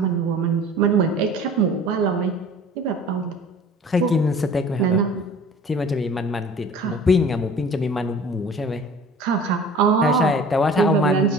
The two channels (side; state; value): both; normal; correlation 0.45